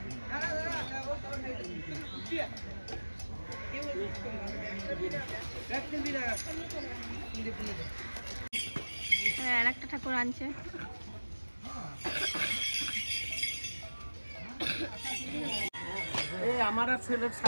আর একটা ঠাকুর আনছে। আমার ছেলের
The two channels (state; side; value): inverted; both; correlation -1.00